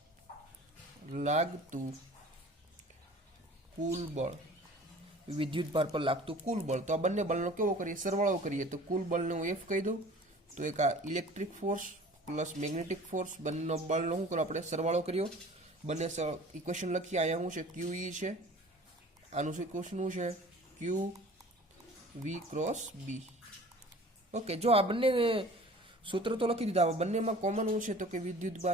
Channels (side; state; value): both; normal; correlation 0.45